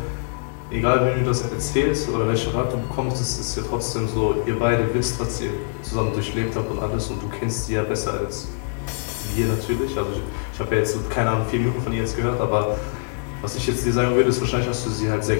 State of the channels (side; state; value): right; silent; digital silence